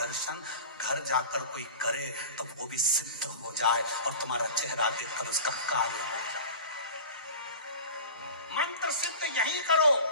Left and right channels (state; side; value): inverted; both; correlation -0.35